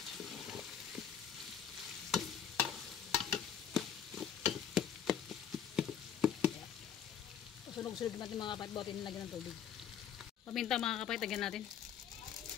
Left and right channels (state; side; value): quieter; right; 8.5 dB